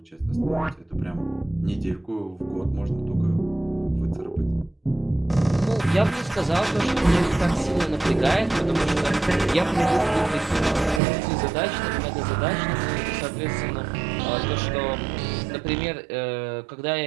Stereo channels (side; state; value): left; drops out; at 11.0 s